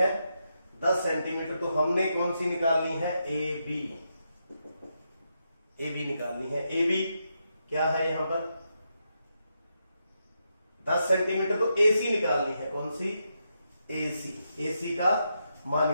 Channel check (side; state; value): both; inverted; correlation -0.83